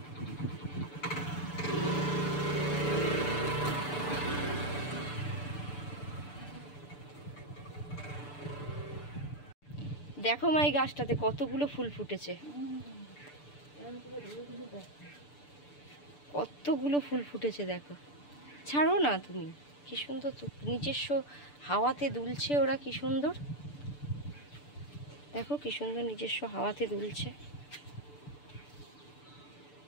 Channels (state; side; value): late; right; 6.8 ms